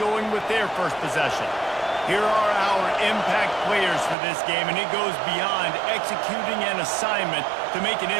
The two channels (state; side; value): drops out; left; at 4.2 s